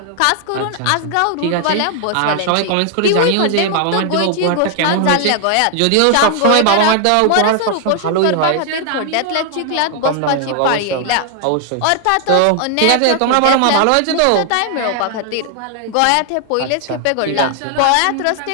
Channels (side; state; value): both; different; correlation 0.00